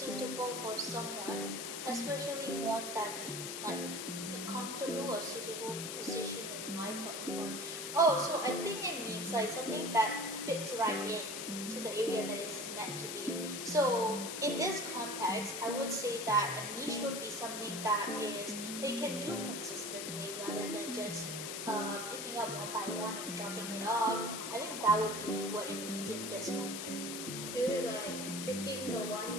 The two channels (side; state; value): left; noise; hiss, 5 dB below the sound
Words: for someone, especially one that they like. A comfortable or suitable position in life or employment. Oh, so I think it means like something that fits right in to the area that is meant to be. So in this context, I would say that a niche would be something that is they can do consistently rather than just picking up one by one and dropping it off. I think that would be what it means in this context. Is it like picking the one